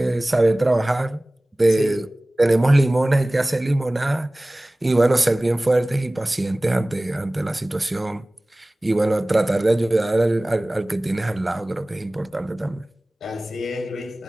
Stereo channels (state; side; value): normal; both; correlation 0.98